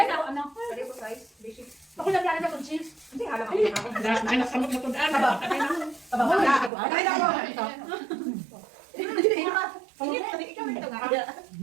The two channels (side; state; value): left; drops out; at 6.7 s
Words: Ako lang lang ng cheese. Hindi alam ako. Ay, nasamot na tudaan.